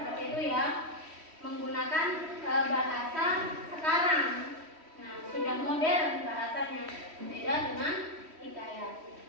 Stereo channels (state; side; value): late; left; 3.1 ms